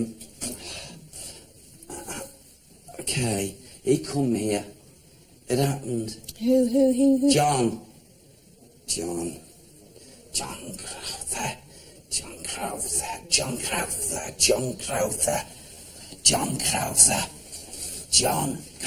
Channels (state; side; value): identical; both; correlation 1.00